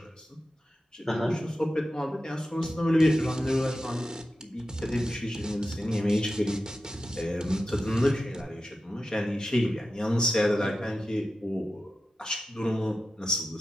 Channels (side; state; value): both; normal; correlation 0.92